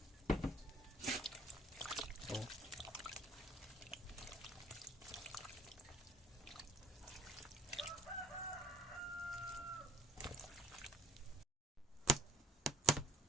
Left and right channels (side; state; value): both; normal; correlation 0.59